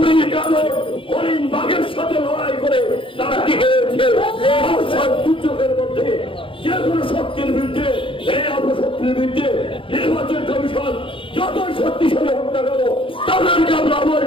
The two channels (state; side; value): late; right; 0.25 ms